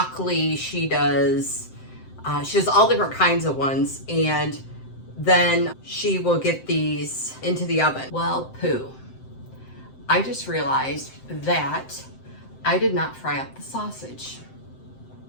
she does all different kinds of ones, and then she will get these into the oven. Well, poo. I just realized that I did not fry up the sausage.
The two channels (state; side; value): late; right; 7.7 ms